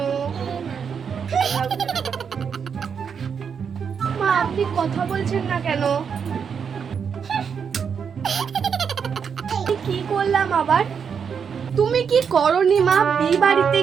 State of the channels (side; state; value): left; quieter; 6.8 dB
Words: মা আপনি কথা বলছেন না কেন? কি করলাম আবার? তুমি কি করনি মা? বিয়ে বাড়িতে